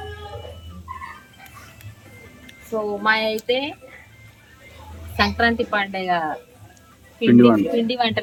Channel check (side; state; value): both; identical; correlation 1.00